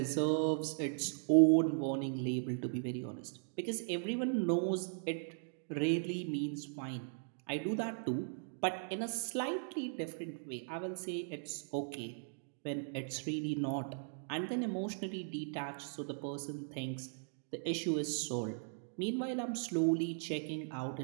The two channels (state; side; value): silent; left; digital silence